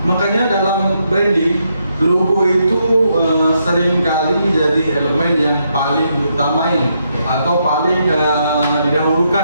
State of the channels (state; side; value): inverted; both; correlation -0.79